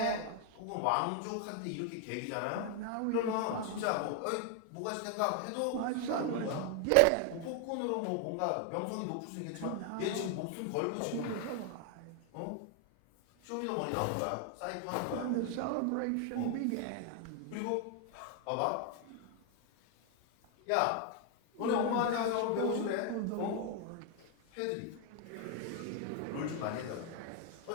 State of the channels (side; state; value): both; different; correlation 0.00